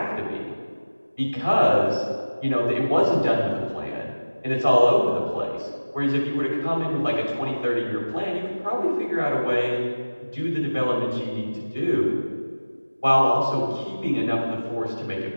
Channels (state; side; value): inverted; both; correlation -1.00